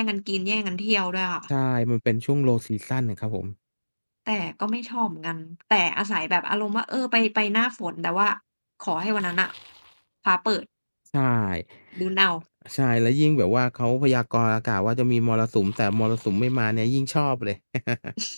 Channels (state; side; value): inverted; both; correlation -1.00